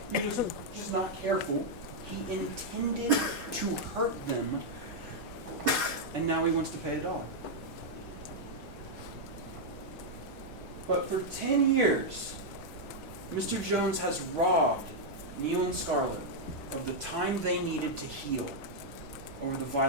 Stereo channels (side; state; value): left; noise; hum, 30 dB below the sound